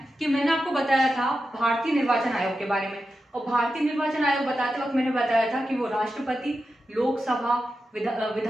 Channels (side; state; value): both; normal; correlation 0.90